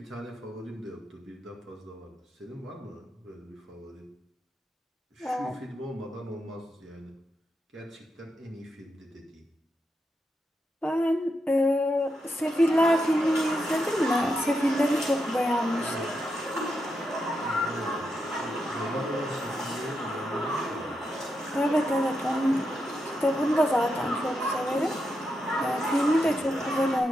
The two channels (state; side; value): normal; both; correlation 0.84